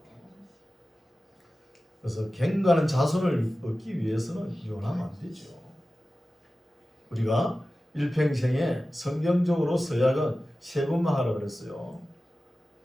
그래서 경건한 자손을 얻기 위해서는 이혼하면 안 되죠. 우리가 일평생에 성경적으로 서약은 세 번만 하라 그랬어요.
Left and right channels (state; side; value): normal; both; correlation 0.95